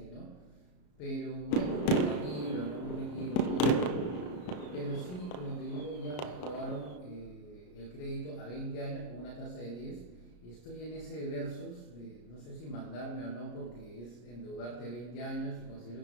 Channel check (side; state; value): right; late; 33 ms